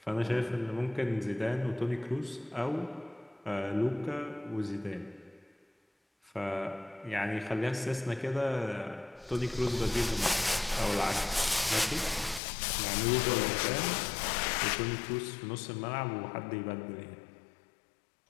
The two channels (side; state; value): right; drops out; at 12.4 s